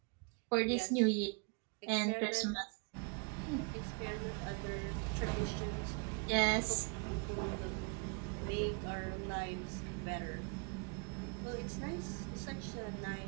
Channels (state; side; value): quieter; left; 35.6 dB